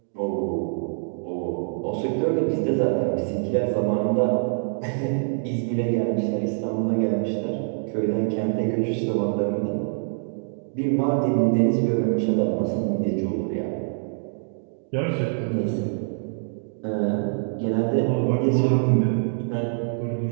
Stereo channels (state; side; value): silent; left; digital silence